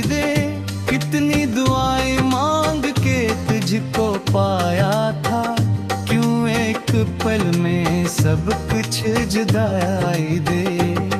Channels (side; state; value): both; identical; correlation 1.00